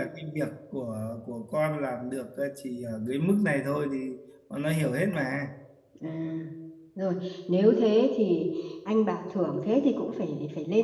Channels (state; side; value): identical; both; correlation 1.00